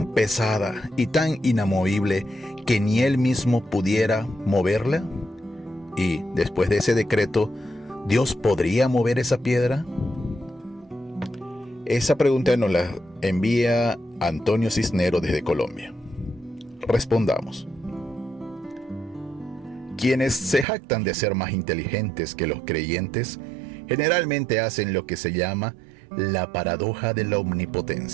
pesada y tan inamovible que ni Él mismo pudiera moverla? Y después de ese decreto, ¿Dios podría mover esa piedra? Esa pregunta nos la envía Antonio Cisnero desde Colombia. Respondamos. Quienes se jactan de ser más inteligentes que los creyentes generalmente hacen lo que se llama la paradoja de la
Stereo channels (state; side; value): drops out; left; at 20.7 s